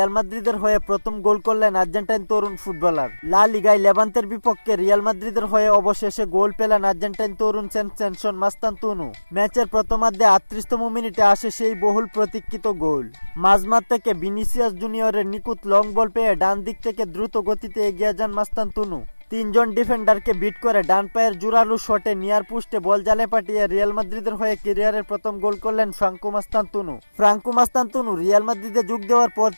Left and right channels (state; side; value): inverted; both; correlation -1.00